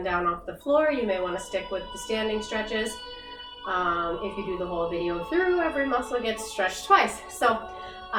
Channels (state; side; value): identical; both; correlation 1.00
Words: down off the floor, you may want to stick with the standing stretches. If you do the whole video through, every muscle gets stretched twice. So